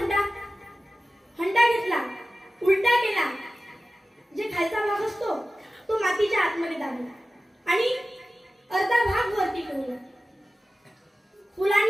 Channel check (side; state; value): both; normal; correlation 0.95